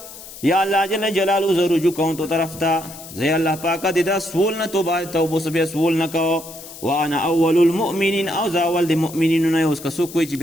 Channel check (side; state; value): left; noise; hiss, 15 dB below the sound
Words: یا اللہ جل جلالو زو رجوع کون تو طرف تا زی اللہ پاکا دیدا سول نہ توبہ سبی سول نہ کہو وانا اول المؤمنین او زاول دی مؤمنین نه اوس کسو کوئی